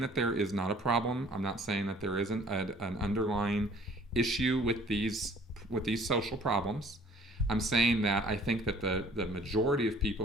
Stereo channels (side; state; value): both; normal; correlation 0.54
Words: there is not a problem. I'm not saying that there isn't an underlying issue with these social problems. I'm saying that I think that the majority of